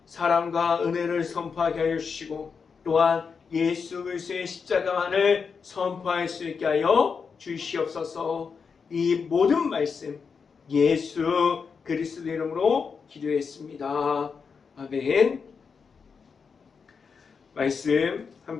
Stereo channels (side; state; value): right; quieter; 5.7 dB